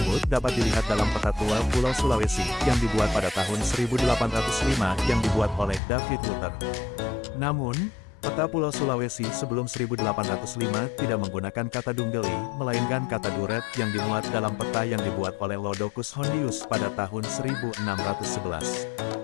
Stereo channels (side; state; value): right; drops out; at 5.8 s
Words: dapat dilihat dalam peta tua Pulau Sulawesi yang dibuat pada tahun 1805 yang dibuat oleh David Luther. Namun, peta Pulau Sulawesi sebelum 1805 tidak menggunakan kata Dunggeli, melainkan kata Duret yang dimuat dalam peta yang dibuat oleh Lodocus Hondius pada tahun 1611.